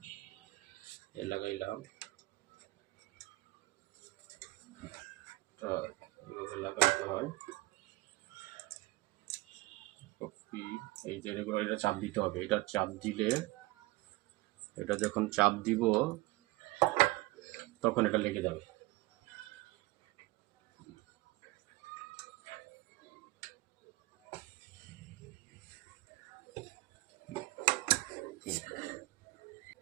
লাগাইলাম, এভাবে লাগাইতে হয়। এই যে এটা চাপ দিতে হবে, এটা চাপ দিলে, এটা যখন চাপ দিব তখন এটা লেগে যাবে।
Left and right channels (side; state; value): left; quieter; 21.0 dB